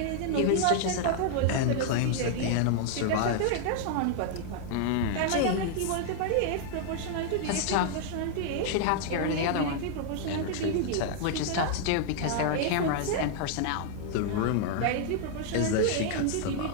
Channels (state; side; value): different; both; correlation 0.00